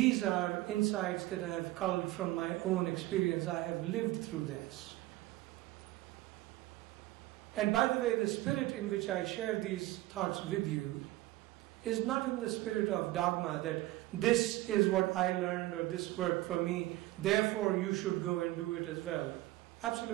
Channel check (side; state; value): left; quieter; 17.5 dB